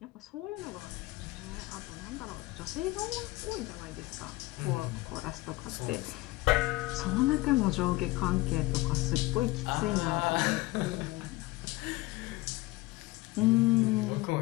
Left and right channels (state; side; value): quieter; right; 20.4 dB